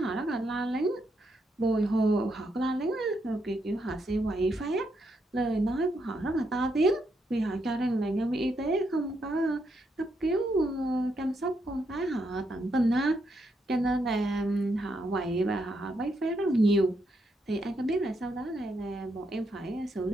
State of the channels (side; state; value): both; normal; correlation 0.79